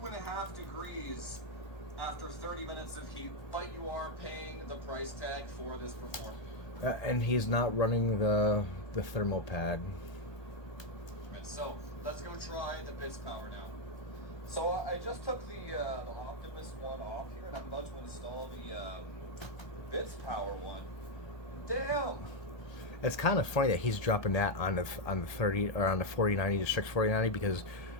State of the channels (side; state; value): right; late; 1.3 ms